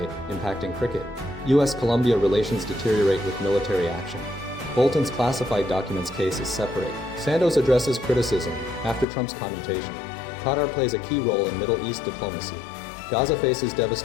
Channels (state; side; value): drops out; right; at 9.1 s